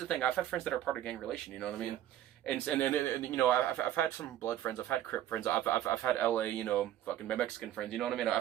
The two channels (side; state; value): left; quieter; 12.3 dB